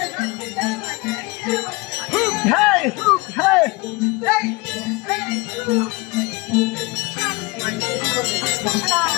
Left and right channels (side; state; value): right; quieter; 25.0 dB